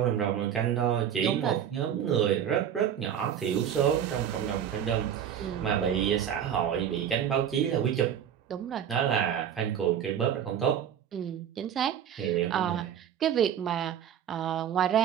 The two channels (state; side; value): quieter; left; 9.2 dB